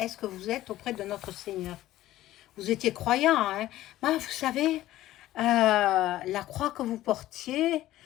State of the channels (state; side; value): quieter; right; 14.9 dB